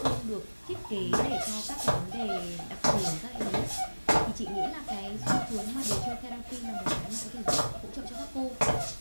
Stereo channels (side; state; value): both; inverted; correlation -1.00